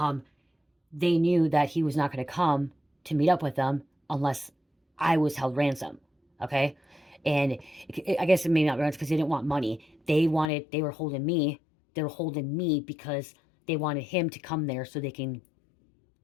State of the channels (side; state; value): right; drops out; at 10.5 s